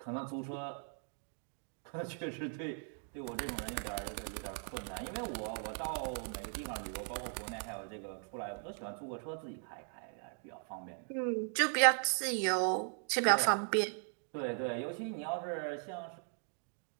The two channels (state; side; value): silent; left; 52 dB below the other